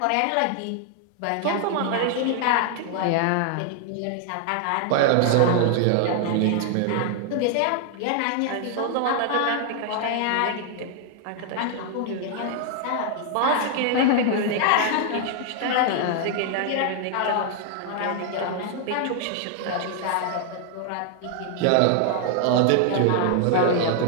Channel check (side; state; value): both; different; correlation 0.00